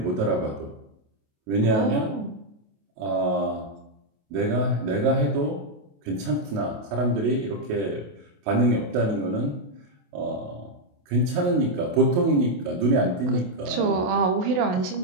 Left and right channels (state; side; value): late; left; 28 ms